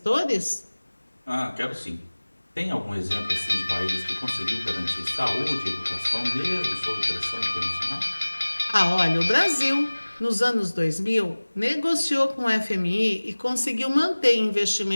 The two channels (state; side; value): inverted; both; correlation -1.00